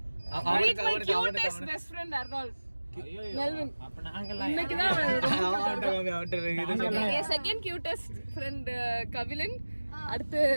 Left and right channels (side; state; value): both; inverted; correlation -1.00